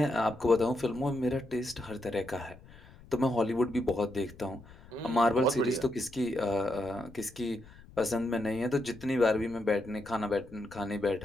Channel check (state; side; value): noise; left; rumble, 21 dB below the sound